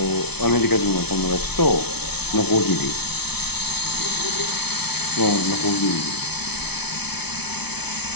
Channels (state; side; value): late; right; 0.98 ms